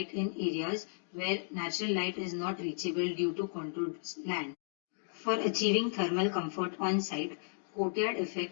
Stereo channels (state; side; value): silent; right; digital silence